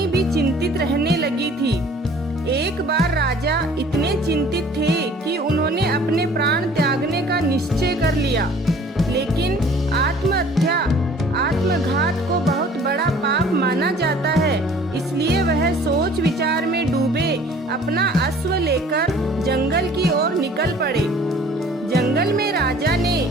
भी चिंतित रहने लगी थी। एक बार राजा इतने चिंतित थे कि उन्होंने अपने प्राण त्यागने का निश्चय कर लिया, लेकिन आत्महत्या, आत्मघात को बहुत बड़ा पाप माना जाता है, इसलिए वह सोच विचार में डूबे अपना अश्व लेकर जंगल की ओर निकल पड़े। जंगल में राजा ने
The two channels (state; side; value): normal; both; correlation 0.52